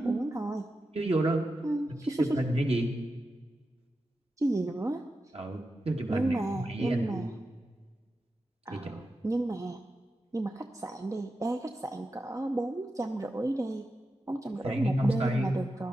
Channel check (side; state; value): both; normal; correlation 0.90